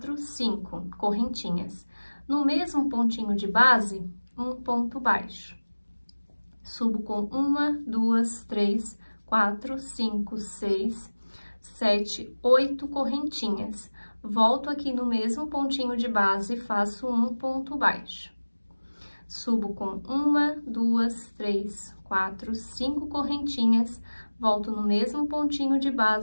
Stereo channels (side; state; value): both; inverted; correlation -1.00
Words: 5 correntinhas. No mesmo pontinho de base, um ponto baixo. Subo com 1, 2, 3, 4, 5, 6, 7, 8 correntinhas. Volto aqui no mesmo pontinho de base e faço um ponto baixo. Subo com 1, 2, 3, 4, 5 correntinhas, volto no mesmo pontinho de